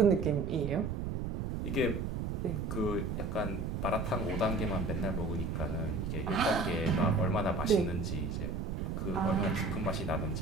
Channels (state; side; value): noise; right; rumble, 2 dB below the sound